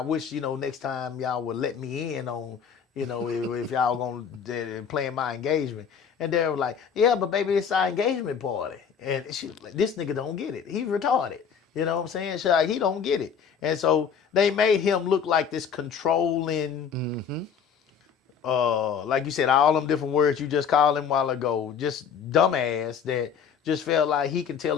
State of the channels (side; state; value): right; quieter; 7.1 dB